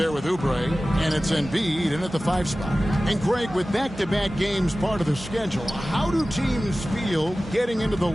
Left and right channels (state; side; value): noise; right; hum, 18 dB below the sound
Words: with Oubre, and it's Embiid in at the 5 spot. And Greg, with back-to-back games part of the schedule, how do teams feel getting into the